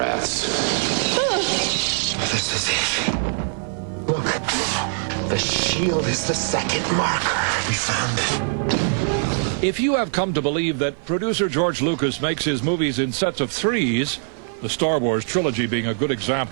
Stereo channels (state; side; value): silent; left; 55 dB below the other